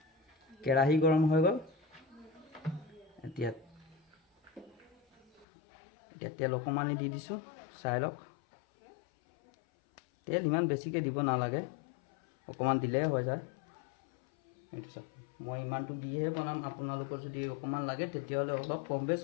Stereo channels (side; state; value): right; drops out; at 5.5 s